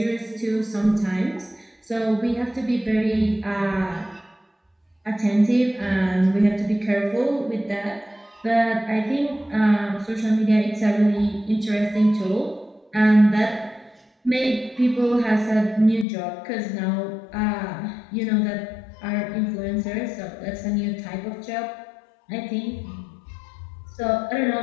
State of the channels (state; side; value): drops out; right; at 16.1 s